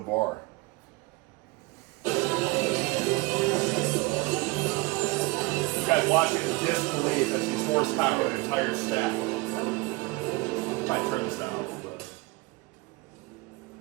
You guys watching in disbelief as these horsepower an entire stack. Might turn this down a little bit.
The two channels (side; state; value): left; quieter; 24.2 dB